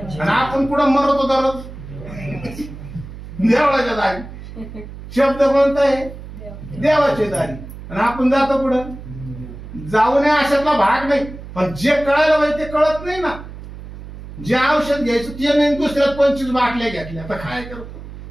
आणि आपण पुढं मरतो दररोज देवळाच्या दारी. शब्द कोणता आहे, देवाची दारी. आणि आपण जातो पुढं. जाऊ नये अशातला भाग नाही. पण जे कळायला पाहिजे ते कळत नाही ना. जे औषध घ्यायचं ते नाही, दुसऱ्यात 25 बाटल्या घेतल्या. आता काय करतो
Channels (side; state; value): right; noise; hum, 13 dB below the sound